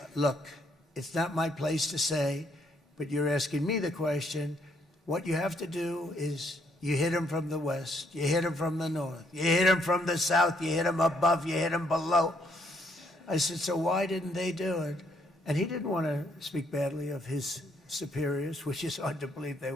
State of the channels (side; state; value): both; normal; correlation 0.70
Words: look, it's not my place to say, but you're asking me the question. What you have to do is you hit them from the west, you hit them from the north, you hit them from the south, you hit them above, you hit them below. I said, so why didn't they do it? And he didn't want to speak badly of his superiors, which is hard to believe they